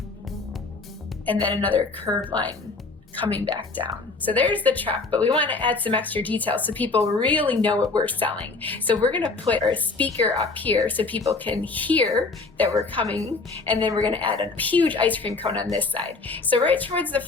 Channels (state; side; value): quieter; right; 3.8 dB